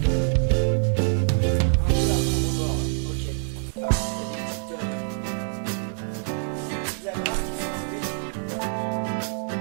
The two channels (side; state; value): left; silent; digital silence